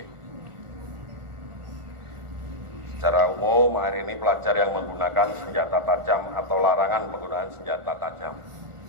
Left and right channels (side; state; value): left; late; 1.4 ms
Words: Secara umum hari ini pelajar yang menggunakan senjata tajam atau larangan penggunaan senjata tajam.